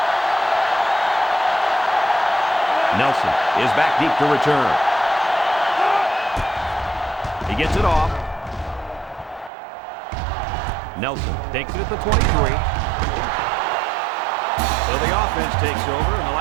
Nelson is back deep to return. He gets it off. Nelson takes it at the 23. So the offense takes over, and the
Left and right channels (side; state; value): left; drops out; at 9.5 s